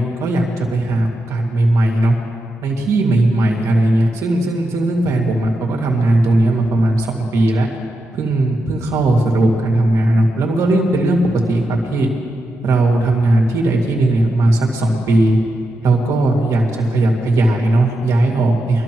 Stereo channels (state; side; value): normal; both; correlation 0.87